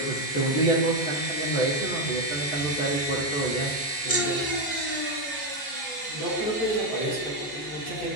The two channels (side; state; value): right; late; 14 ms